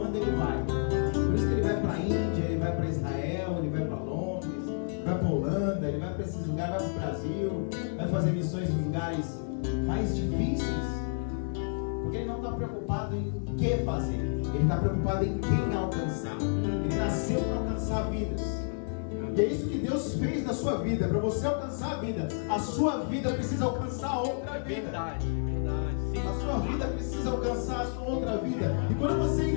ele vai. Por isso que ele vai para a Índia, ele vai para Israel, ele vai para Londres, vai para a Holanda, ele vai para esses lugares, vai para o Brasil, vai fazer missões em lugares mais difíceis. Porque ele não está preocupado em o que fazer, ele está preocupado em quem alcançar. Ele nasceu para alcançar vidas. E é isso que Deus fez na sua vida. Para você alcançar a vida, a sua vida precisa alcançar outra vida. Verdade. A sua vida precisa alcançar a sua outra vida. E quando você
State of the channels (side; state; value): right; silent; digital silence